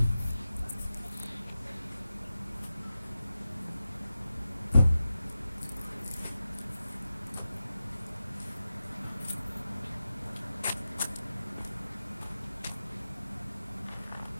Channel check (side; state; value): both; inverted; correlation -0.92